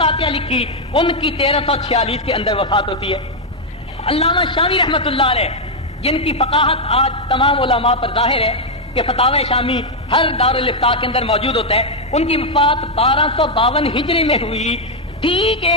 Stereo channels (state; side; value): normal; both; correlation 0.00